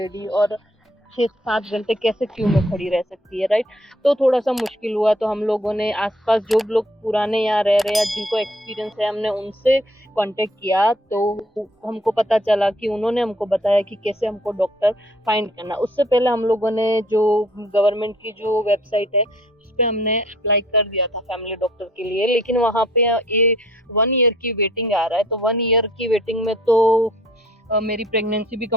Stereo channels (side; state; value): both; normal; correlation 0.59